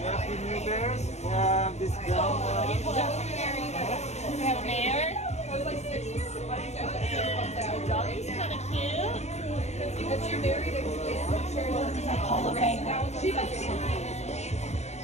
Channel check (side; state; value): right; late; 0.32 ms